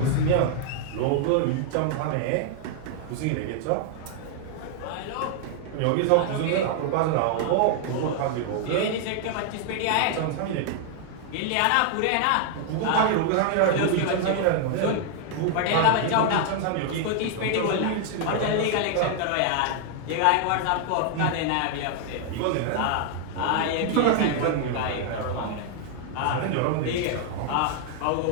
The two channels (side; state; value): both; different; correlation 0.00